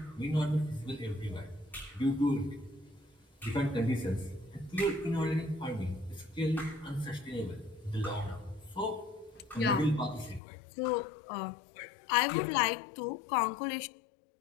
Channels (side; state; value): right; drops out; at 10.4 s